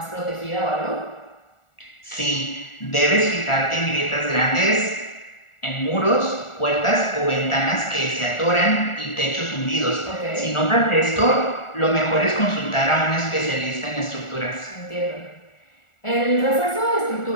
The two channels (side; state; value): right; late; 1.4 ms